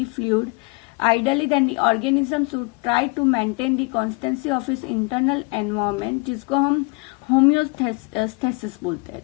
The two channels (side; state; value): right; quieter; 28.6 dB